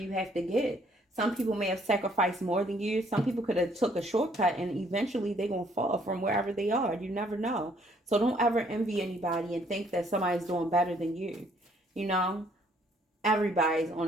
have to get? Some people may have sacrificed more than you. Some people could have took a shortcut and eventually they're going to fall from wherever they are. You never know. So don't ever envy anybody and think that somebody's doing better than you. You know, everybody's on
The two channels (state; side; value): normal; both; correlation 0.64